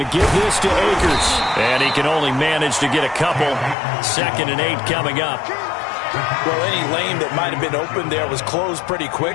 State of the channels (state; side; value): drops out; right; at 3.8 s